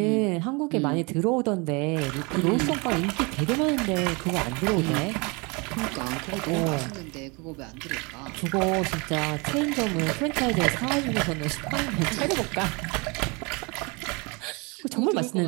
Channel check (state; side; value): quieter; left; 29.1 dB